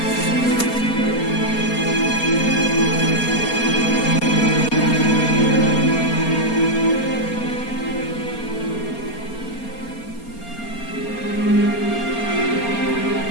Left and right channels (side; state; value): right; late; 4.3 ms